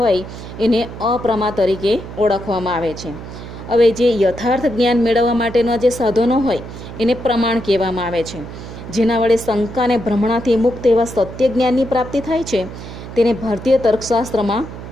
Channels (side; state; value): right; noise; hum, 12 dB below the sound